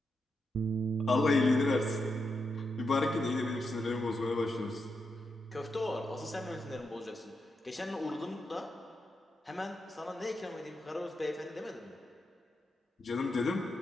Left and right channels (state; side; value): normal; both; correlation 0.85